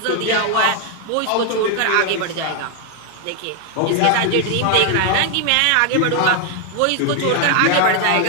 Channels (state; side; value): different; both; correlation 0.00